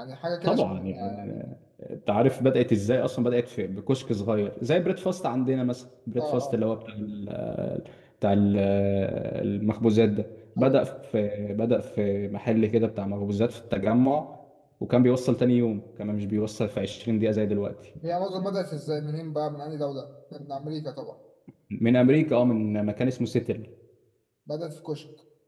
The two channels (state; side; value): identical; both; correlation 1.00